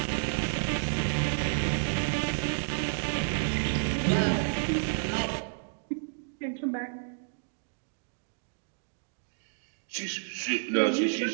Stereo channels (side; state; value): left; silent; digital silence